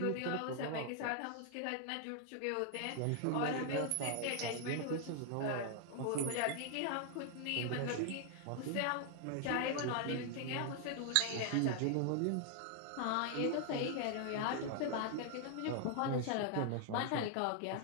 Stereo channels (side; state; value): both; different; correlation 0.00